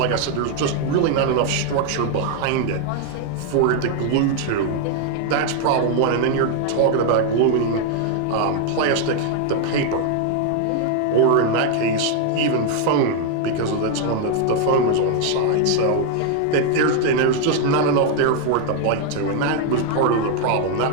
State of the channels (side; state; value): both; different; correlation 0.00